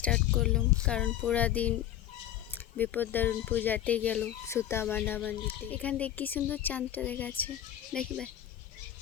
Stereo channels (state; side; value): quieter; right; 11.6 dB